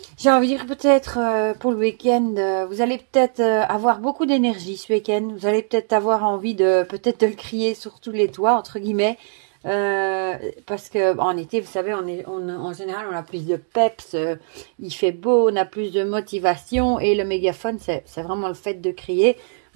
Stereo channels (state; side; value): silent; left; digital silence